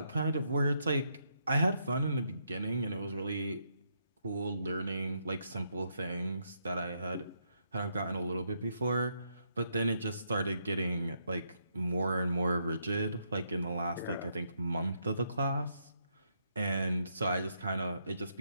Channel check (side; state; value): both; inverted; correlation -0.77